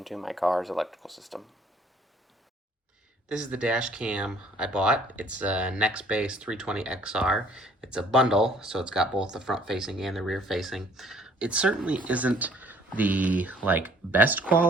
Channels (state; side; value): normal; both; correlation 0.58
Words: my car's electrical system. This is the dash cam I bought. It's a Nextbase 320XR. It's a bundle, so it's got both the front facing and the rear facing. It certainly isn't the best